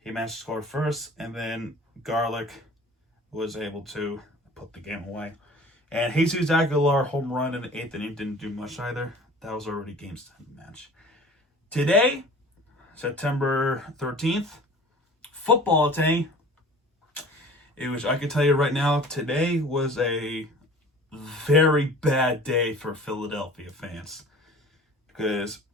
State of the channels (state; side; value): normal; both; correlation 0.45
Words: managed to score first, and then Garlick was able to put the game away. And Jesus Aguilar home run in the 8th inning didn't do much either. That was already game 7 match. Today, September 13th, football day. I can tell you right now, today was a very bad day for Philadelphia fans. Because